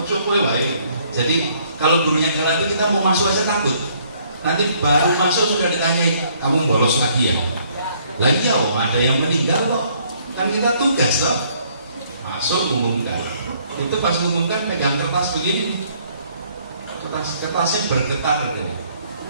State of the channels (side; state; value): both; inverted; correlation -0.64